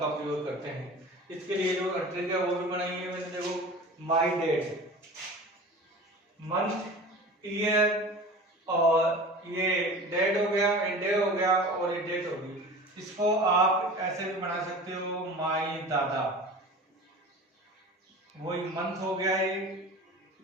प्रयोग करते हैं। इसके लिए जो ट्रिक है वो भी बनाई है मैंने, देखो माई डेट, मंथ, ईयर और ये डेट हो गया, डे हो गया और ये डेट होगी। इसको आप ऐसे भी बना सकते हो, माई दादा, वही मंथ हो गया,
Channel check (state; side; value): normal; both; correlation 0.37